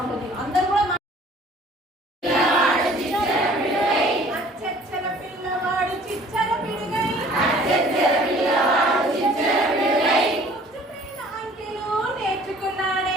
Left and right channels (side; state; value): both; normal; correlation 0.52